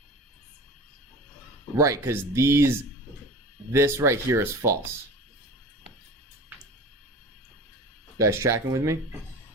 Right, because this right here is false. You guys tracking with me?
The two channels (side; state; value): both; normal; correlation 0.36